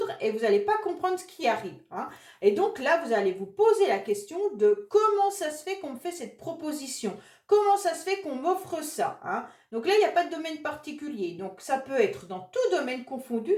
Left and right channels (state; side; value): identical; both; correlation 1.00